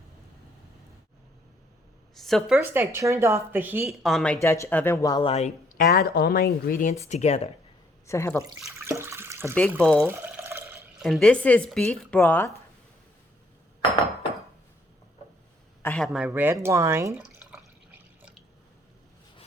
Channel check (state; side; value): normal; both; correlation 0.66